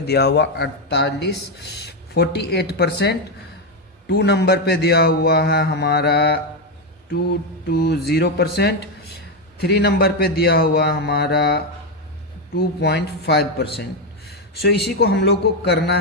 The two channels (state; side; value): normal; both; correlation 0.07